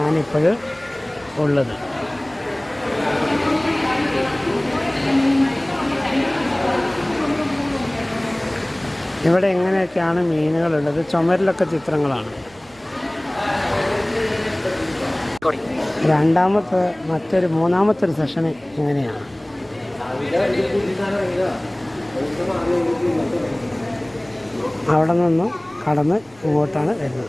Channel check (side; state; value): right; noise; rumble, 28 dB below the sound